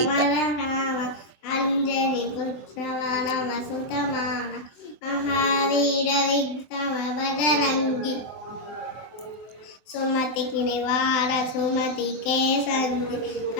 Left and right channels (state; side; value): late; right; 24 ms